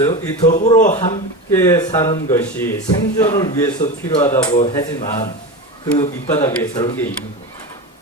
이 더불어 함께 사는 것이 생존을 위해서 필요하다고 하지만 그 밑바닥에 저런 게 있는 거예요.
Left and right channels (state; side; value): normal; both; correlation 0.24